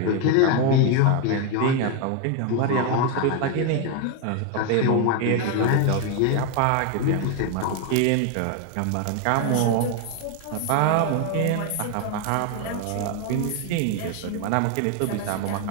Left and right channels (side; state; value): both; different; correlation 0.01